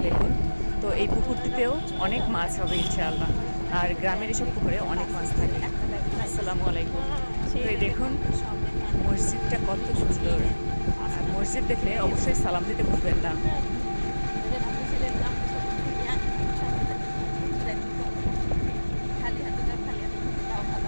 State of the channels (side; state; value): both; inverted; correlation -1.00